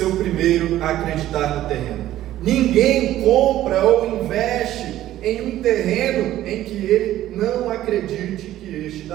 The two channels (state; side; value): quieter; left; 13.6 dB